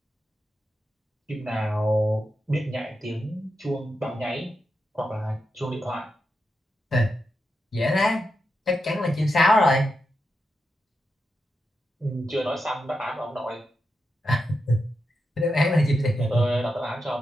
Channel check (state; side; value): normal; both; correlation 0.87